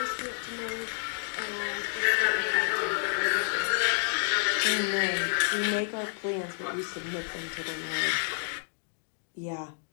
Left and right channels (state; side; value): silent; right; digital silence